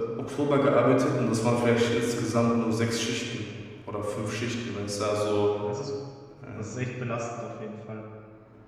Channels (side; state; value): both; identical; correlation 1.00